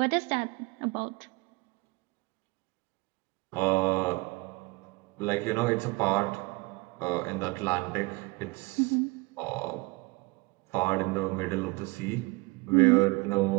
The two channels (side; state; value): left; quieter; 25.0 dB